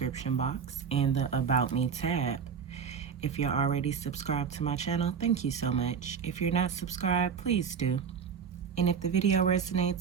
box and the About Me tab. If you're already subscribed to my channel, thank you so much. If you're not subscribed, please do. And if the video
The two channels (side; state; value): left; quieter; 6.7 dB